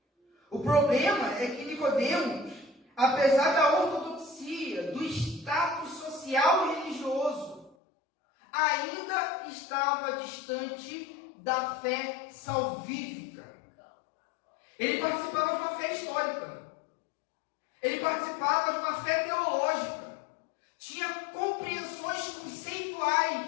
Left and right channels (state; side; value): drops out; right; at 7.8 s